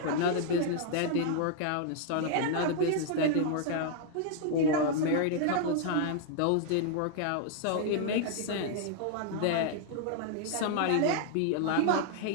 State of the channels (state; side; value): different; both; correlation 0.00